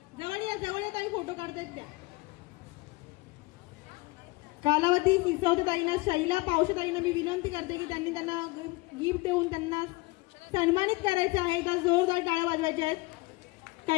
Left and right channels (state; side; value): quieter; right; 23.4 dB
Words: जवळ या ताई, फोटो काढतायत त्या. कालावती सिसोदेताईंना, शैला पावशेताईंना मी विनंती करते की त्यांना गिफ्ट देऊन त्यांना सन्मानित करायचं आहे. तर जोरदार टाळ्या वाजवायच्या आहेत.